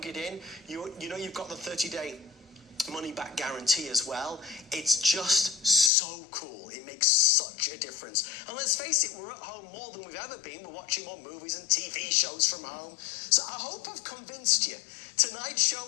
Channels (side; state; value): right; drops out; at 5.9 s